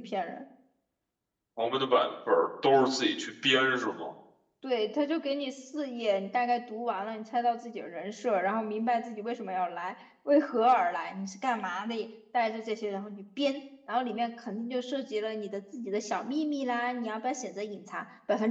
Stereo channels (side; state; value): both; identical; correlation 1.00